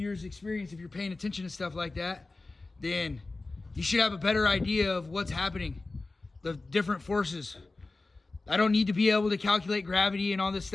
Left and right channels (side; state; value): right; quieter; 3.4 dB